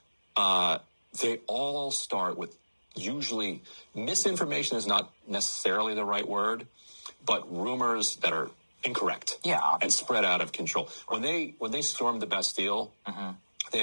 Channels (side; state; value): both; inverted; correlation -1.00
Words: they all start with, usually, misinformation is not necessarily the right word, but rumors that are incorrect, and spread out of control. When they stormed the Bastille, they